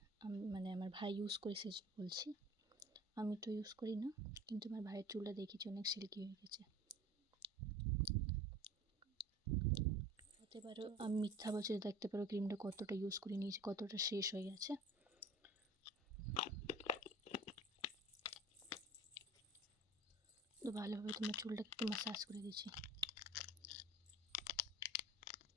মানে আমার ভাই ইউজ করে সে বলছি, আমি তো ইউজ করি না, কিন্তু আমার ভাইয়ের চুলটা দেখেছি অনেক সিল্কি হয়ে গেছে। হতে পারো আমি মিথ্যা বলছি, দেখতে পারো ক্রিমটা কতটা ইউজ করে নিয়েছি, কতটা শেষ হয়ে গেছে। তো ভালোভাবে তোমার চুলটাকে একটু ম্যাসাজ করে দিচ্ছি।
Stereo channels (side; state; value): both; normal; correlation 0.43